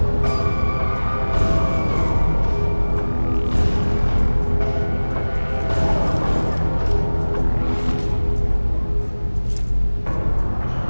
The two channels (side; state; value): both; inverted; correlation -1.00